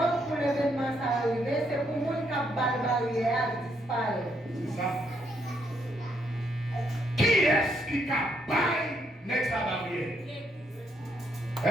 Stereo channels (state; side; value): normal; both; correlation 0.75